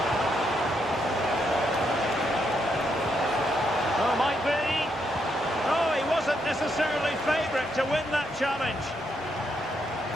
Oh, might be. Oh, he wasn't necessarily favourite to win that challenge.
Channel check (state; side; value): normal; both; correlation 0.78